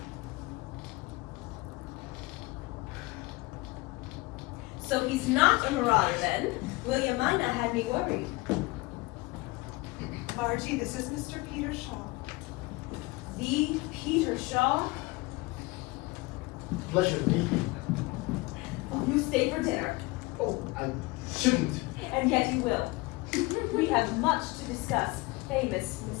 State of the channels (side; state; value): right; quieter; 22.8 dB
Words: So he's not a marauder then. William Mina had me worried. Margie, this is Mr. Peter Shaw. The Peter Shaw? Pleasure to meet you. Oh, you stay for dinner. Oh, I shouldn't. And yet you will. We have much to discuss. Famous